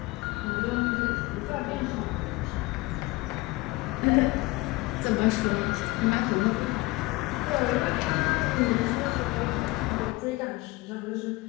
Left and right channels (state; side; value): quieter; right; 22.0 dB